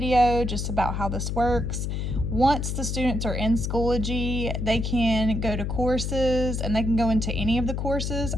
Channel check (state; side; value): noise; left; hum, 2 dB below the sound